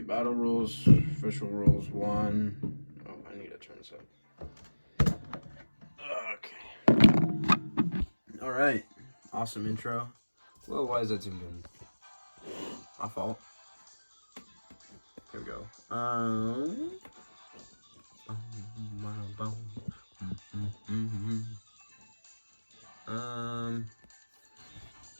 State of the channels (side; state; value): both; inverted; correlation -1.00